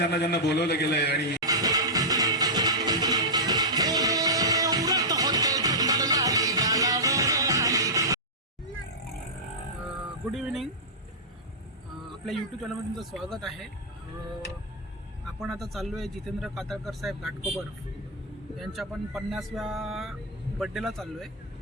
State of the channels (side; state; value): both; normal; correlation -0.11